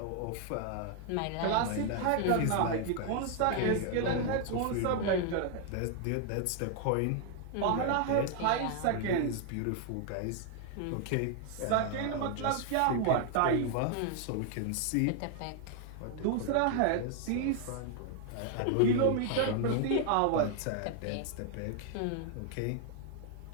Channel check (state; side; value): different; both; correlation 0.00